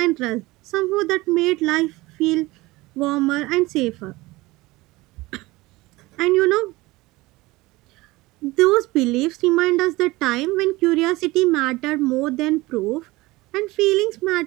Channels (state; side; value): quieter; left; 20.6 dB